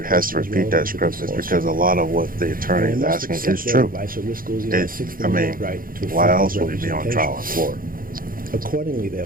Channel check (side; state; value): left; late; 0.41 ms